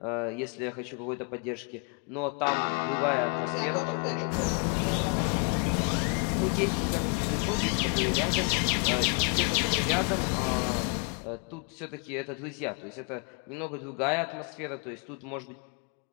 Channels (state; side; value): quieter; right; 35.4 dB